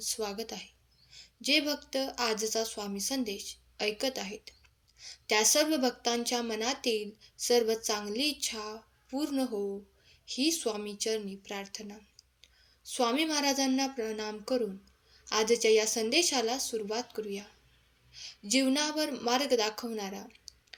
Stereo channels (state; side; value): identical; both; correlation 1.00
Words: आहे. जे भक्त आजचा स्वामी संदेश ऐकत आहेत त्या सर्व भक्तांच्या मनातील सर्व चांगली इच्छा पूर्ण हो ही स्वामी चरणी प्रार्थना. स्वामी महाराजांना प्रणाम करून आजच्या या संदेशाला सुरुवात करूया. जीवनावर मार्ग दाखवणारा,